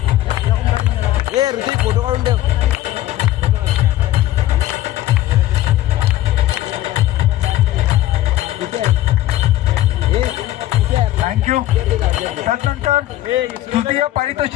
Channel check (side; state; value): right; quieter; 14.5 dB